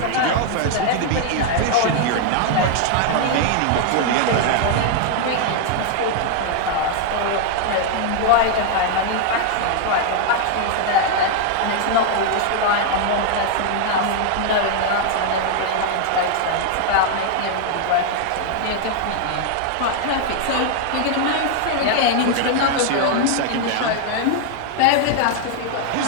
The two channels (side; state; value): both; different; correlation 0.00